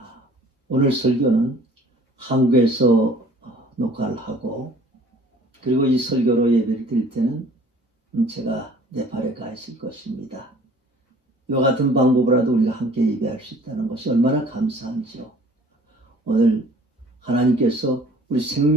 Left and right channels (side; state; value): both; normal; correlation 0.52